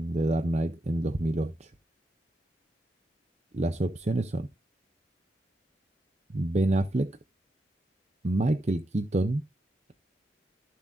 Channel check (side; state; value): both; normal; correlation 0.84